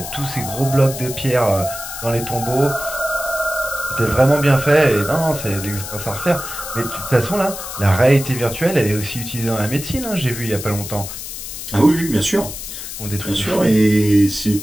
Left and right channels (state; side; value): noise; left; hiss, 9 dB below the sound